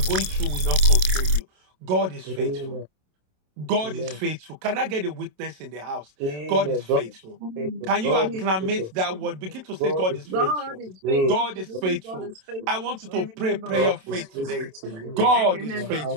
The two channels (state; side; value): late; left; 27 ms